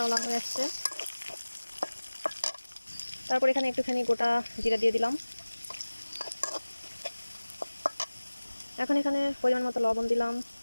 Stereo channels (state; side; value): inverted; both; correlation -1.00